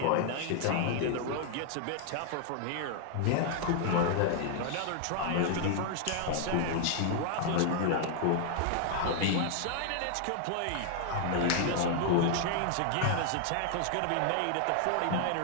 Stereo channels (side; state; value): both; different; correlation 0.00